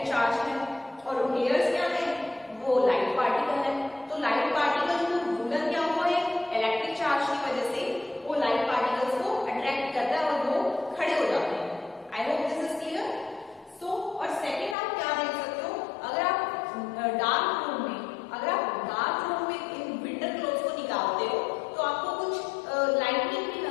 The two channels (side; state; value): right; drops out; at 14.8 s